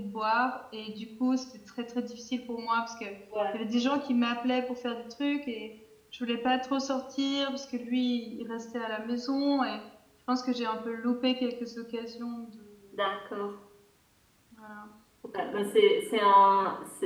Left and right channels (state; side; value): identical; both; correlation 1.00